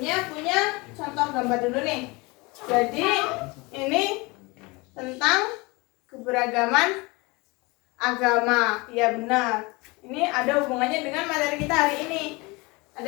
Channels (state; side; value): quieter; right; 25.3 dB